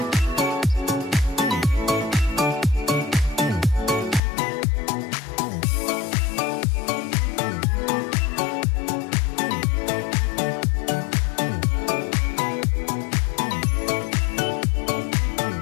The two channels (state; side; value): drops out; right; at 4.2 s